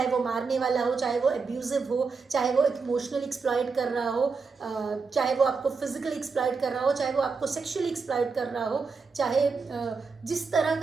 वो मारने वाला हो, चाहे वो एब्यूजिव हो, चाहे वो इमोशनली एक्सप्लॉइट कर रहा हो, चाहे वो आपको फिजिकली एक्सप्लॉइट कर रहा हो, चाहे वो आपको सेक्सुअली एक्सप्लॉइट कर रहा हो, चाहे जिस तरह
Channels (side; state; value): left; quieter; 4.8 dB